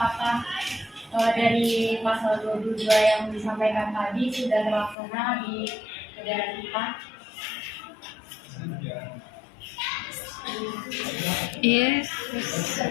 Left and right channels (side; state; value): right; drops out; at 5.0 s